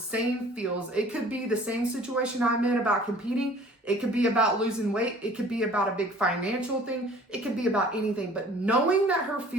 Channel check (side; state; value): both; normal; correlation 0.50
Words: feels. It could be the same situation I'm in about competing. It could be about losing weight. It could be about a big financial thing. It could be about anything. But knowing that her